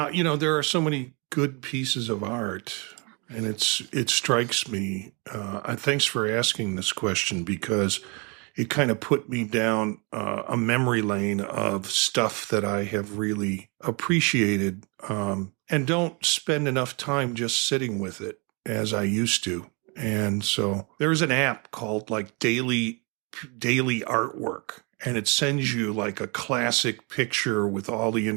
there are so many good pieces of art, and it strikes me. Thanks for asking this question, because it kind of put me down a memory lane of stuff that I have really appreciated, and don't spend enough time just sitting with it as I used to. And so there's an app called like Daily Artwork, and it sends you like a classic picture with all the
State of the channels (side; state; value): left; quieter; 31.4 dB